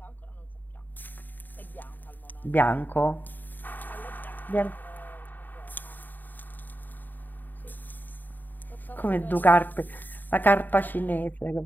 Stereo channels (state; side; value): late; right; 0.089 ms